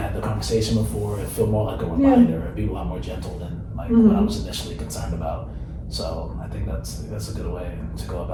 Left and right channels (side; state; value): both; identical; correlation 1.00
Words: the conversation before, it feel more like a reminder. It'd be a lot more gentle than like what I was initially concerned about. So I think that's a good way to go